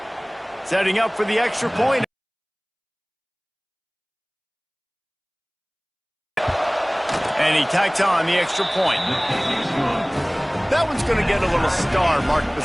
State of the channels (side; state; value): both; identical; correlation 1.00